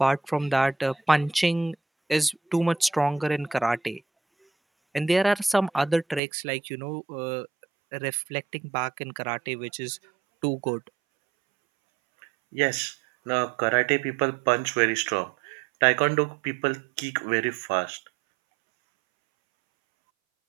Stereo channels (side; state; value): left; drops out; at 6.2 s